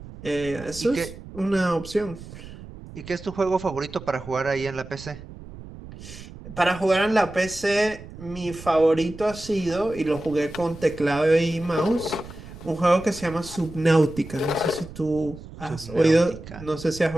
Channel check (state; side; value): noise; right; rumble, 15 dB below the sound